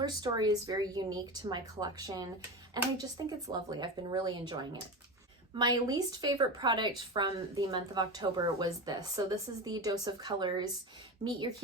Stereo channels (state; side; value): normal; both; correlation 0.24